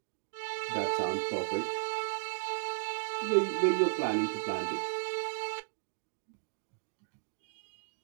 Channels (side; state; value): left; silent; digital silence